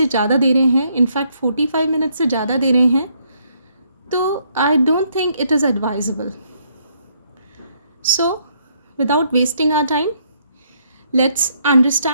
ज़्यादा दे रहे हैं, इनफैक्ट 45 मिनट से ज़्यादा दे रहे हैं, तो I don't think it is advisable. So without wasting our time, let's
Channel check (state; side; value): inverted; both; correlation -0.71